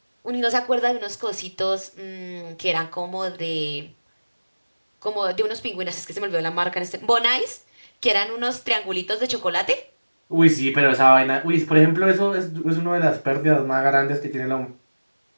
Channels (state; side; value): inverted; both; correlation -1.00